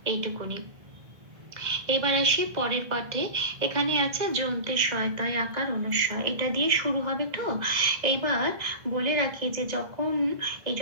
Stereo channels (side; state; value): left; late; 1.8 ms